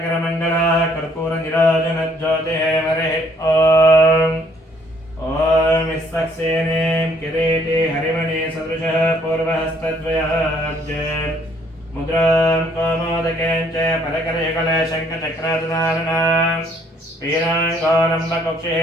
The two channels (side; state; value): both; normal; correlation 0.64